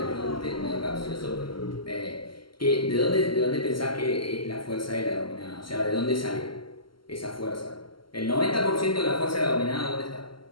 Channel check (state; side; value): late; right; 0.73 ms